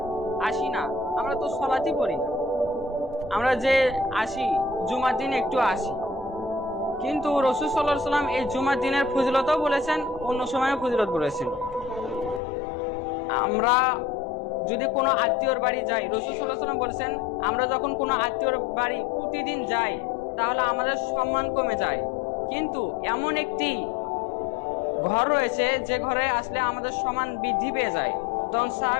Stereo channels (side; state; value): right; drops out; at 12.4 s